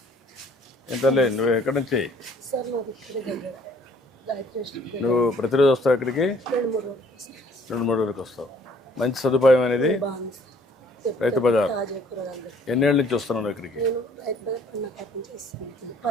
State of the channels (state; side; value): normal; both; correlation 0.58